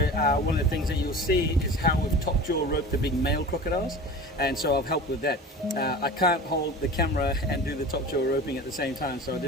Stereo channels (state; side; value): normal; both; correlation 0.36